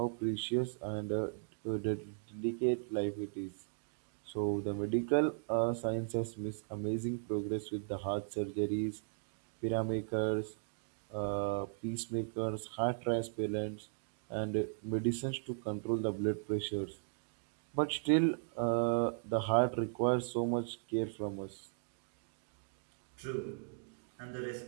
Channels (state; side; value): silent; left; digital silence